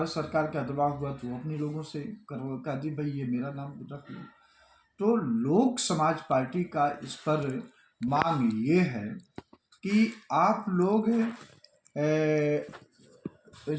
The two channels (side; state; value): both; identical; correlation 1.00